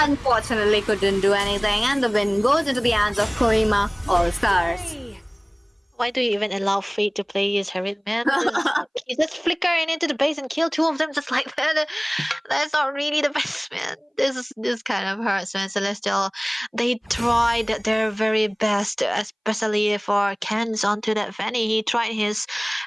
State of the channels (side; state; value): both; identical; correlation 1.00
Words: couldn't do anything, and the win goes into the hands of Kohima All Stars. Why do you even allow Fate to play his Herald, man? He just flicker into the base and kill two of them just like that. That's not really the best, man. This kind of hurts, man. Celestial, they tried their very best, especially for Ken's onto that Fanny. He tried his